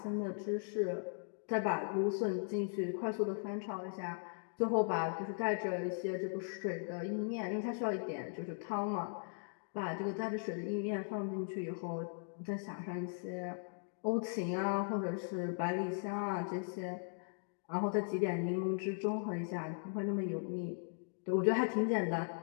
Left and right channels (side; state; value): right; silent; digital silence